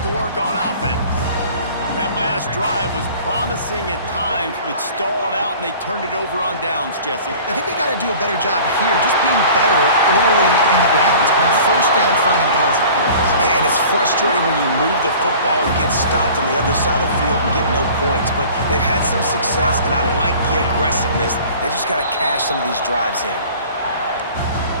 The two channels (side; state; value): both; inverted; correlation -0.45